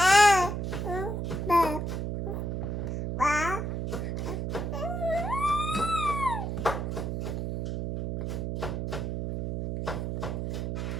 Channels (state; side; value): noise; right; hum, 2 dB below the sound